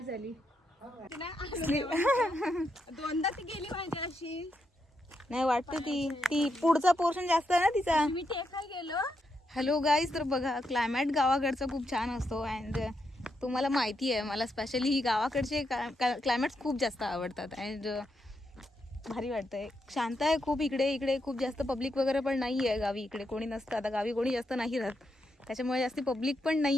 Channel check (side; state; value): both; normal; correlation 0.82